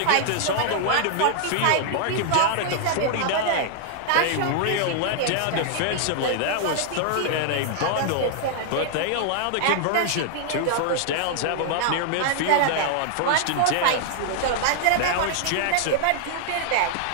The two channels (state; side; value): different; both; correlation 0.00